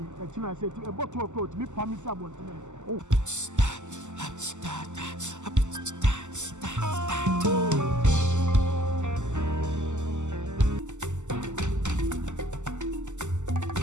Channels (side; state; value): left; late; 0.84 ms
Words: I say to a bottle of coat, me promise about me. Oh.